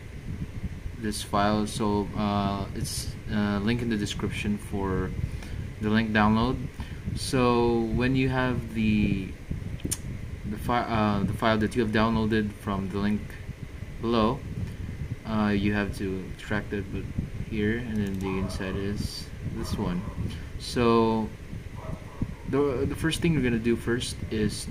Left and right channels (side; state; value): both; identical; correlation 1.00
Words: file. So it's link in the description for the link download. So when you have the file that you have downloaded from the link below, you have to extract it, but here, and then the inside is this one. So the first thing you're gonna do first is